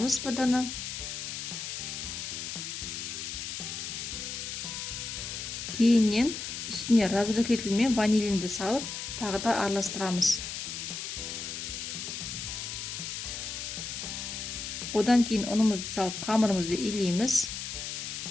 бір дана. Кейіннен үстіне разрыхлитель мен ванилинді салып, тағы да араластырамыз. Одан кейін ұнымызды салып, қамырымызды илейміз.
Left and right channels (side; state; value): left; noise; hiss, 6 dB below the sound